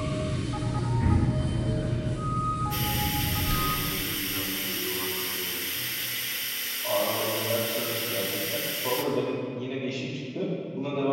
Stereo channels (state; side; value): identical; both; correlation 1.00